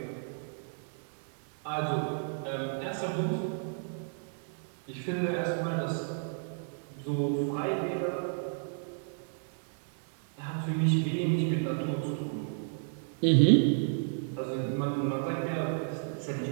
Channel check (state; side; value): silent; left; 57 dB below the other